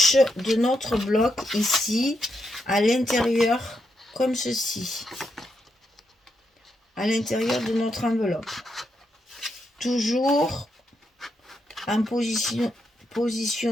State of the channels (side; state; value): both; normal; correlation 0.81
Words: de notre bloc ici, à l'intérieur, comme ceci. À l'intérieur de notre enveloppe. Toujours en